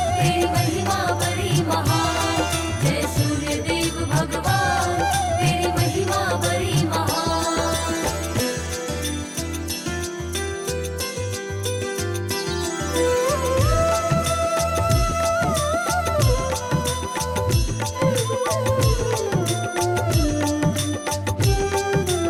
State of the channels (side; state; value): both; identical; correlation 1.00